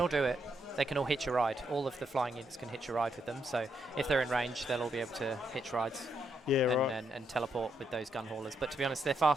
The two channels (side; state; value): both; normal; correlation 0.79